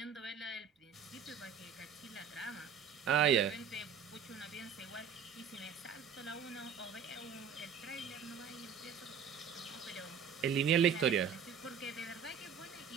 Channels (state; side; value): quieter; left; 7.2 dB